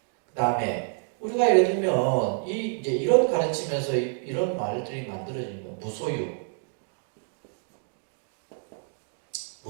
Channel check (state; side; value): silent; left; 59 dB below the other